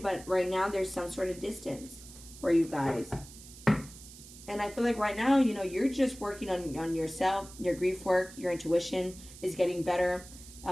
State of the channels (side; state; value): right; noise; hiss, 17 dB below the sound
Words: but right now there's some sort of distance for you guys. And I feel like right now, you know, you're just working on yourself, your grief work, your intuition is getting better.